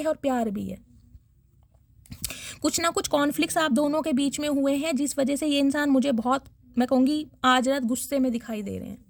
और प्यार भी है। कुछ ना कुछ कॉन्फ्लिक्ट्स आप दोनों के बीच में हुए हैं, जिस वजह से ये इंसान मुझे बहुत, मैं कहूँगी, आज रात गुस्से में दिखाई दे रहे हैं।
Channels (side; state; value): both; identical; correlation 1.00